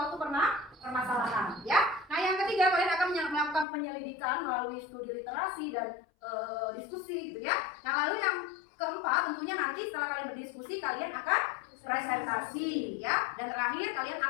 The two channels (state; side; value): drops out; right; at 3.7 s